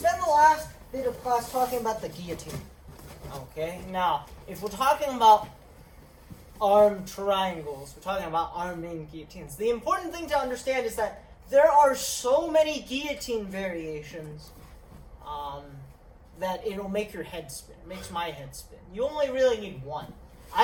the last bit of class talking about the guillotine. Okay, now, if we're talking about arm triangles, we're talking about arm in guillotines. The important thing to understand is that there are so many guillotine variations that it'll make your head spin. It makes my head spin. You only really need one.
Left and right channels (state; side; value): identical; both; correlation 1.00